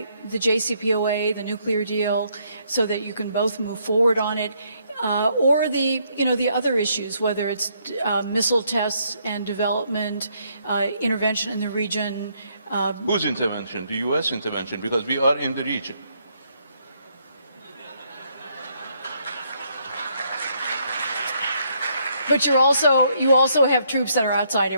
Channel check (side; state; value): both; inverted; correlation -0.72